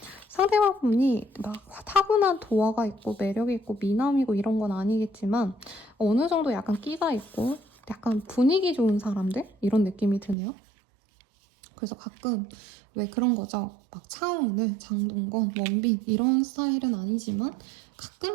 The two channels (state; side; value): drops out; left; at 10.4 s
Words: 상대방분이 막 타고난 도화가 있고 매력이 있고 미남이고 이런 건 아니겠지만 어느 정도 약간 끼가 있고 약간 분위기 좋은 사람들? 이런 느낌이 드네요. 그래서 가끔 왜 그런 거죠. 막 차은우, 장동건, 원빈 이런 스타일은 아니지만